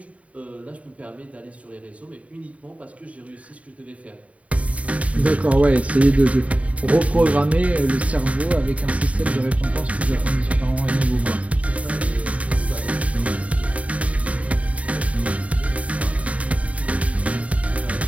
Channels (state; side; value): late; left; 0.066 ms